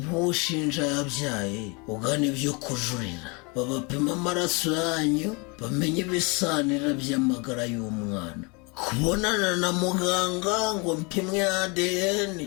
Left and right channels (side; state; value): right; quieter; 30.2 dB